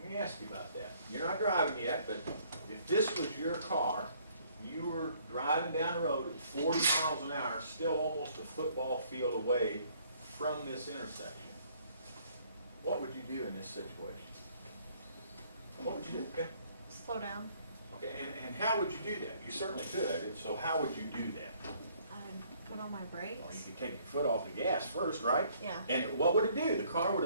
Let me ask you about that. You're not driving yet, but if this was your car, you were driving down the road at 40 miles an hour, still almost a football field away from this intersection, what would you do in this situation? What would you do? Okay. Slow down. Okay, and how would you do that? You certainly could, so how would you do that? I'd put on my Well, you brakes. could take your foot off the gas first, right? Yeah. And what would it do? The car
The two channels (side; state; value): both; inverted; correlation -0.62